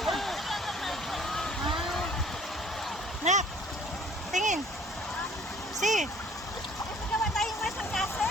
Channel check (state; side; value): normal; both; correlation 0.55